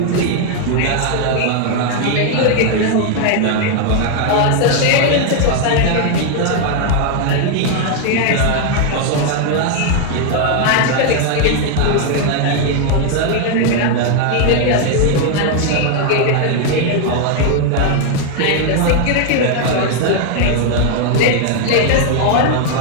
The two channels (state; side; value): different; both; correlation 0.00